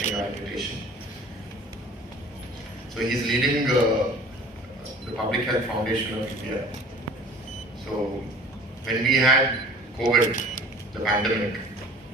our invitation. So he's leading the Public Health Foundation of India. So when we had COVID, the pandemic,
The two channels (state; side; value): normal; both; correlation 0.46